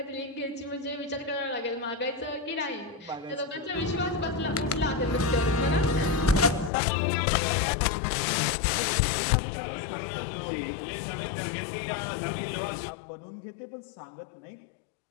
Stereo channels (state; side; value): drops out; right; at 6.7 s